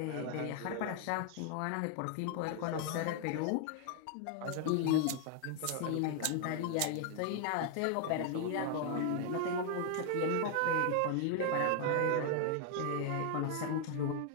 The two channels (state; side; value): different; both; correlation 0.00